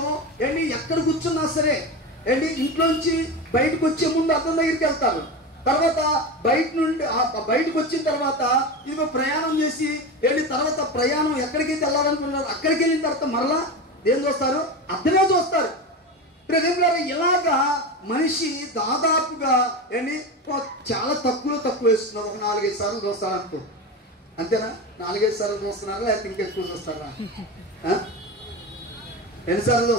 ఎక్కడ కూర్చున్నా సరే ఇంట్లోంచి బయటకు వచ్చే ముందు అద్దం దగ్గరికి వెళ్తారు. తర్వాత బయటకు వచ్చిన తర్వాత ఇదిగో ప్రయాణం చేసి తర్వాత ప్రయాణం ఎక్కడికైతే వెళ్ళాలనుకున్నారు అక్కడికి వెళ్ళిన తర్వాత మరలా ఏం చూస్తారు? అద్దమే చూస్తారు. ఇలాగా మనిషి దాదాపుగా చాలా తక్కువ వేస్తున్నారు. ఒక 4-5 సార్లు చూస్తారు అనుకో. అంతేనా? 4-5 సార్లు చూస్తున్నారా, లేకపోతే ఇంకా ఎక్కువ చూస్తారా? ఎన్నిసార్లు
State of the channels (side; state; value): both; normal; correlation 0.23